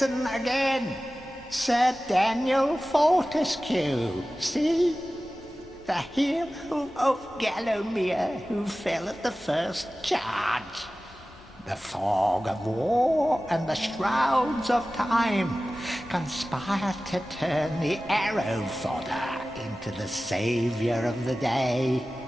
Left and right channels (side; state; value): both; normal; correlation 0.96